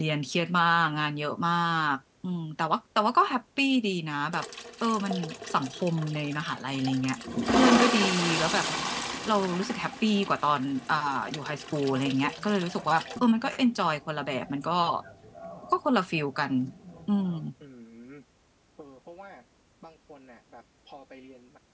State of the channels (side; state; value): both; identical; correlation 1.00